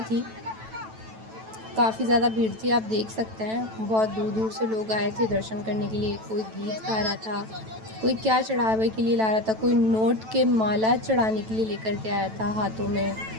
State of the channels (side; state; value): left; late; 9.1 ms